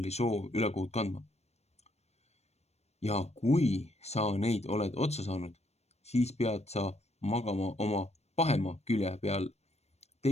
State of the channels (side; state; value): right; late; 0.31 ms